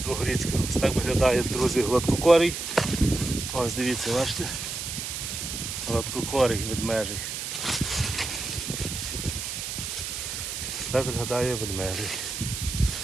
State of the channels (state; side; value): noise; right; hiss, 5 dB below the sound